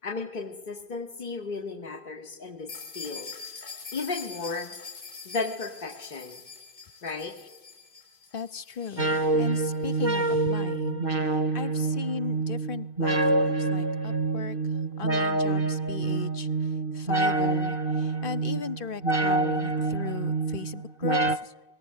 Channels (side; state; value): right; late; 2.5 ms